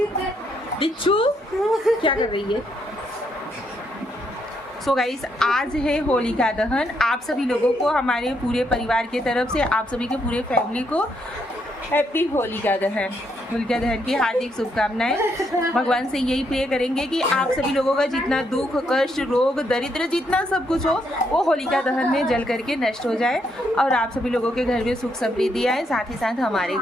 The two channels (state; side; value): normal; both; correlation 0.75